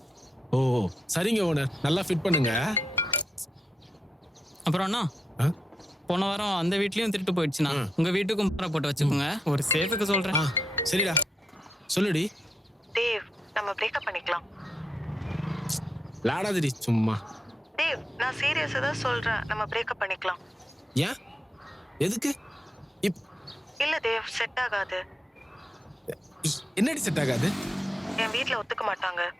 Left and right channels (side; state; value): both; normal; correlation 0.85